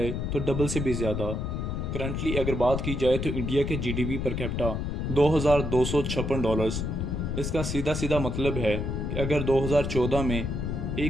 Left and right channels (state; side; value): noise; left; rumble, 2 dB below the sound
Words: तो डबल से भी ज़्यादा। करंटली अगर बात की जाए तो इंडिया के जीडीपी पर कैपिटा 2256 डॉलर्स। इसका सीधा सीधा मतलब है कि अगर 2014 में